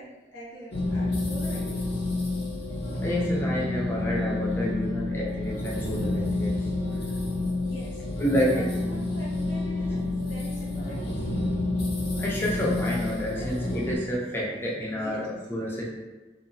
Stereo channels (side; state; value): both; normal; correlation 0.77